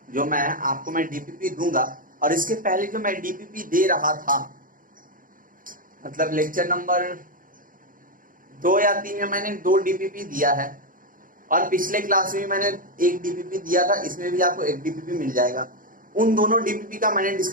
जो मैं आपको मैं डीपीपी दूंगा, और इसके पहले जो मैं डीपीपी दे रहा था, मतलब लेक्चर नंबर 2 या 3 में मैंने 2 डीपीपी दिया है, और पिछले क्लास में मैंने 1 डीपीपी दिया था, इसमें भी आपको 1 डीपीपी मिल जाएगा। उन दोनों डीपीपी का मैंने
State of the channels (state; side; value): late; left; 0.40 ms